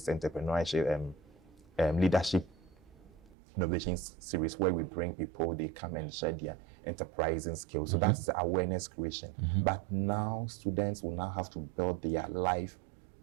entrepreneurship leadership innovation series where we bring people, they come and share their enterprising skills. So that's the awareness creation. But now students will now have to build their life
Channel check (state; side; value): drops out; left; at 3.3 s